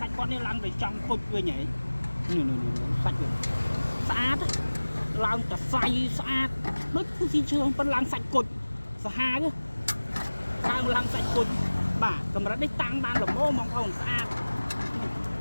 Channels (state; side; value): inverted; both; correlation -1.00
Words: ាច់គាត់នេះឡើងទៅចង់គុជវិញហ៎នេះសាច់វាស្អាតឡើងតសៃស្អាតដូចភូស៊ីលឈើប៉ុន្តែឡើងសាច់គុជសាហាវឡើងសាច់គុជបាទកម្រិតនេះតាំងបានល្មមបងប្អូនស្អាត